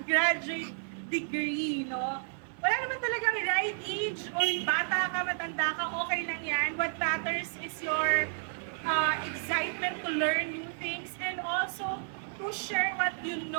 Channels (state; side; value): silent; left; 57 dB below the other